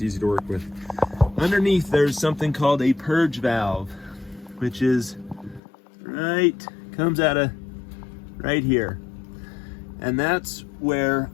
easy to work with. Underneath, there's something called a purge valve, which is comes out of right here. And that's where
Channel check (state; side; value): drops out; right; at 5.6 s